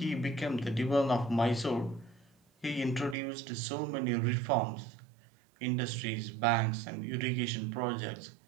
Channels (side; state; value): left; drops out; at 3.2 s